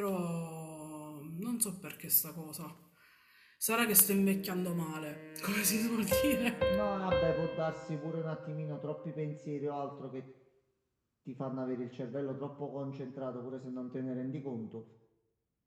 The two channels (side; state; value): both; identical; correlation 1.00